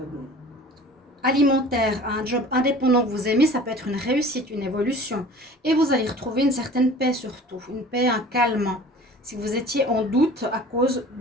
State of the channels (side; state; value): both; normal; correlation 0.44